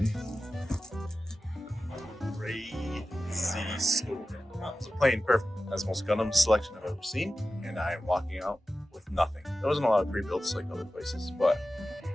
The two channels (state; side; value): normal; both; correlation 0.94